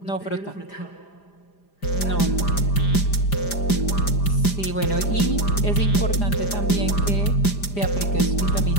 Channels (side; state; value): right; late; 5.0 ms